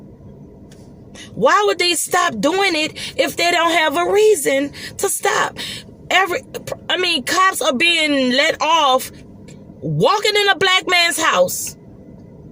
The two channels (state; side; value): identical; both; correlation 1.00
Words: Why would they stop doing it if they don't have a reason to stop? Cops are being let off walking in a black man's house.